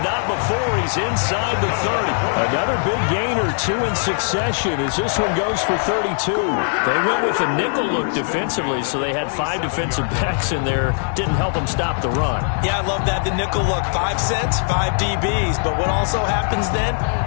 not before he's inside the 30. Another big gain or two in succession as this one goes for 32. They went with a nickel look defensively, so they had 5 defensive backs in there. Didn't help them stop the run. Yeah, I love that, the nickel look. 5 cents, 5 DBs. But what also happens then,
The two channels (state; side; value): silent; right; digital silence